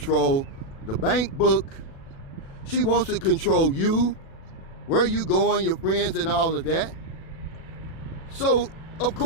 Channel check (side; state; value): right; late; 37 ms